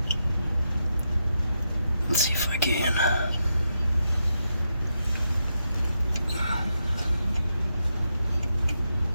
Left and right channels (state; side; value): inverted; both; correlation -0.83